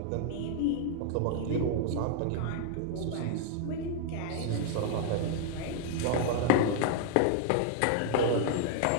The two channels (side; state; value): both; different; correlation 0.00